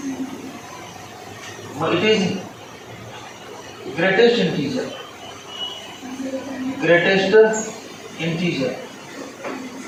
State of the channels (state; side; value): identical; both; correlation 1.00